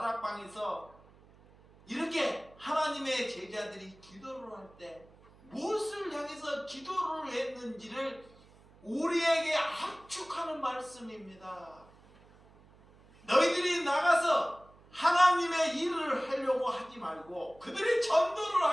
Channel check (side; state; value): right; noise; hum, 26 dB below the sound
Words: 이렇게 하나님의 제자들이 기도를 할 때 무엇을 향해서 기도를 했는지를 우리에게 압축하는 말씀입니다. 너희들이 나가서 하나님의 일을 하려고 하지 말고 그들이 전도를